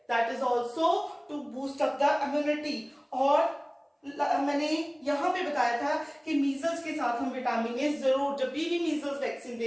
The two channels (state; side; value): identical; both; correlation 1.00